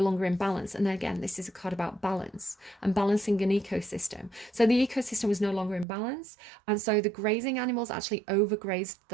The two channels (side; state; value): left; drops out; at 5.9 s